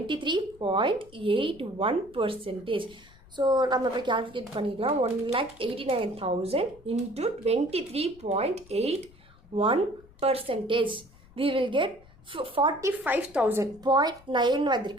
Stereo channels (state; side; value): noise; left; rumble, 25 dB below the sound